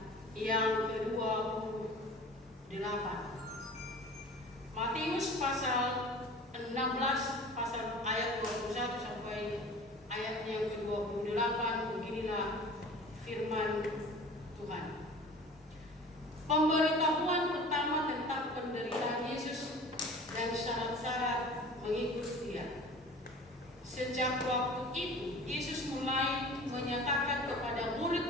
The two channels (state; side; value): normal; both; correlation 0.42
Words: yang ke-28. Matius pasal 16 pasal ayat 21 sampai ayatnya yang ke-28. Beginilah firman Tuhan. Pemberitahuan pertama tentang penderitaan Yesus dan syarat-syarat mengikut Dia. Sejak waktu itu, Yesus mulai menyatakan kepada